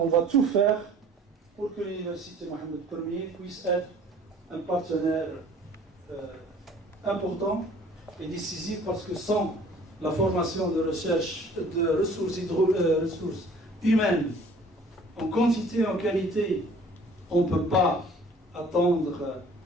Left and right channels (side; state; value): both; normal; correlation 0.52